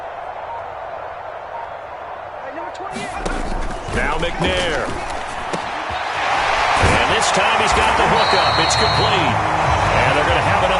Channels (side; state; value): both; identical; correlation 1.00